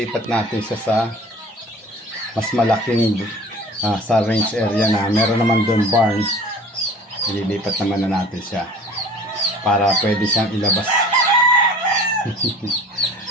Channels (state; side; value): normal; both; correlation 0.44